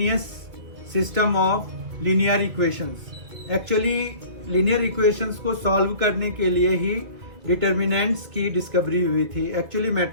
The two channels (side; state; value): left; late; 2.5 ms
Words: system of linear equations. Actually linear equations को solve करने के लिए ही determinants की discovery हुई थी, actually